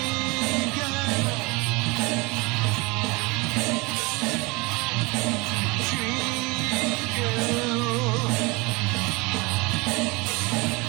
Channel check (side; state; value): left; quieter; 25.9 dB